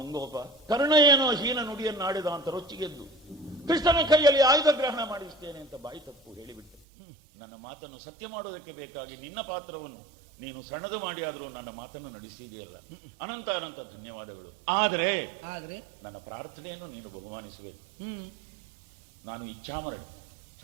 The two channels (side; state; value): left; drops out; at 6.8 s